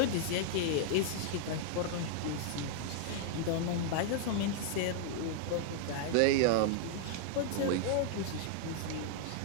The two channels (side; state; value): both; different; correlation -0.01